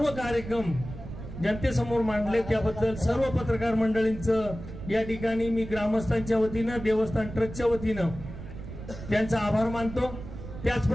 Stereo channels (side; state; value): right; noise; rumble, 11 dB below the sound